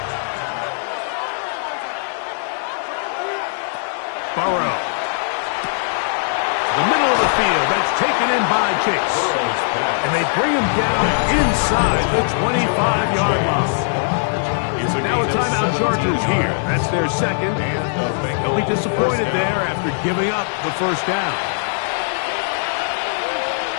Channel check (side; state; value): right; silent; digital silence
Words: Burrow. The middle of the field. That's taken in by Chase. And they bring him down inside the 25-yard line. Now a timeout Chargers here. That's their 2nd. They'll be disappointed there after giving up the 1st down.